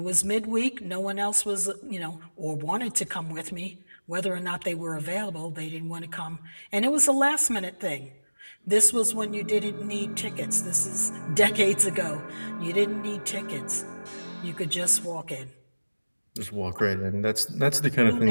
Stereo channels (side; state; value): both; inverted; correlation -1.00